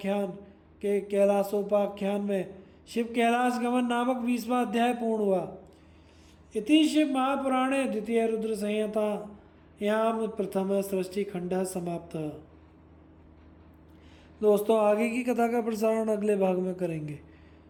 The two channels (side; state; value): both; identical; correlation 1.00